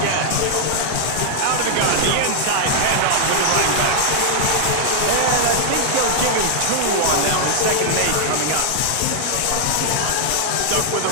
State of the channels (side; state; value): both; different; correlation 0.00